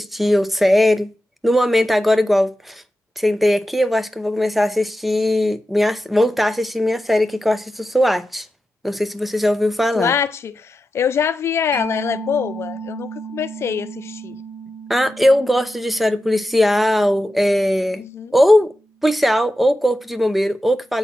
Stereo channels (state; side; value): normal; both; correlation 0.91